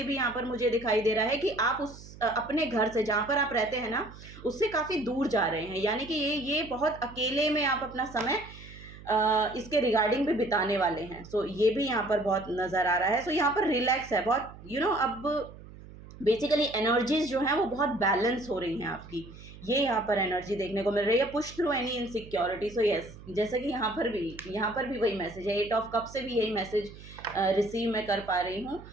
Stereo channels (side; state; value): right; noise; hum, 17 dB below the sound